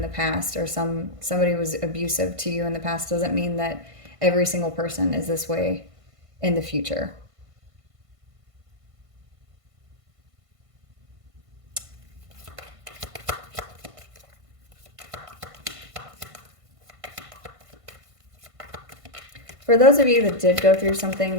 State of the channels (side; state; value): left; late; 1.5 ms